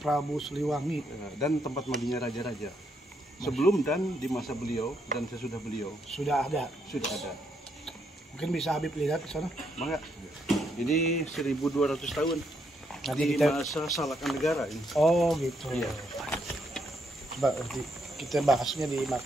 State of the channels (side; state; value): both; normal; correlation 0.76